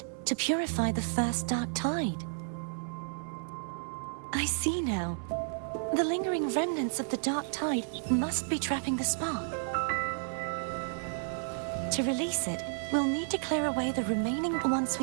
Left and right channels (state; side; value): silent; left; 56 dB below the other